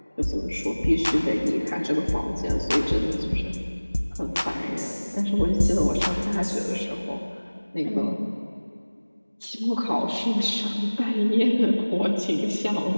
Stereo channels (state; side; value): inverted; both; correlation -1.00